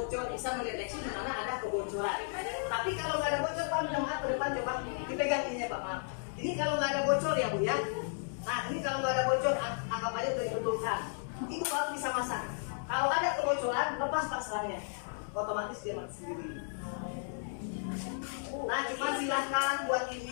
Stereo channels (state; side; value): silent; right; digital silence